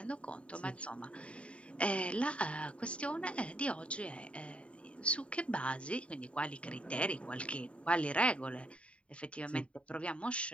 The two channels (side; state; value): right; late; 0.061 ms